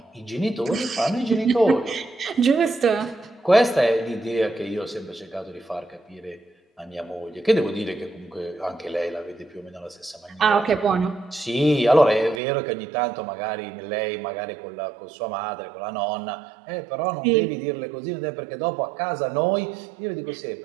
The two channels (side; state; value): left; drops out; at 12.4 s